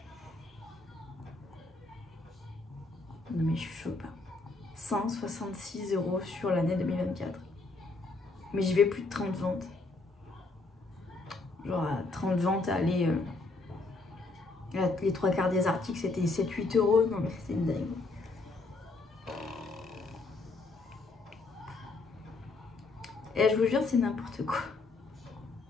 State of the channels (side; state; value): right; quieter; 3.5 dB